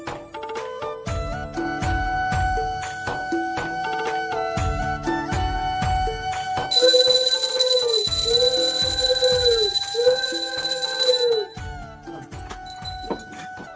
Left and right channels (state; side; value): identical; both; correlation 1.00